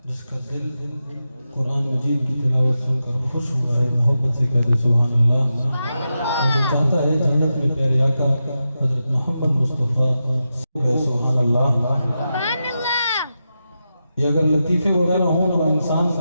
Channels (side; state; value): both; inverted; correlation -0.89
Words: जिसका दिल कुरान मजीद की तिलावत सुनकर खुश हुआ है, मोहब्बत से कहते सुभान अल्लाह। और जो चाहता है जन्नत में प्यारे आका हजरत मोहम्मद मुस्तफ़ा सुभान अल्लाह। ये अगर लतीफ़े वगैरह हों तो इंसान